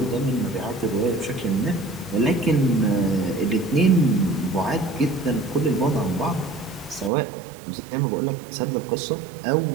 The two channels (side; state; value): left; drops out; at 7.1 s